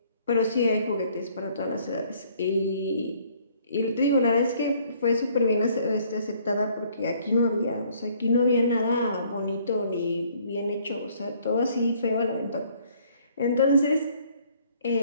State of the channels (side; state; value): both; inverted; correlation -0.61